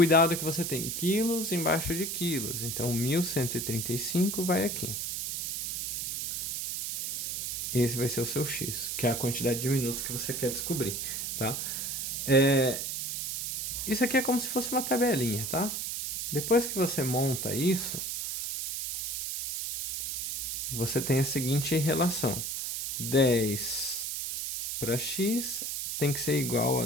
é que você tem quilos embaixo de quilos. Então, 1.135 vai aqui. Esse vai ser o seu X, que é a quantidade de minutos que você quer descobrir, tá? Isso aqui é como se fosse uma tabelinha, tá? Depois que você monta isso, você tem a seguinte relação: 10 para x tem que ser igual a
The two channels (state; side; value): noise; right; hiss, 3 dB below the sound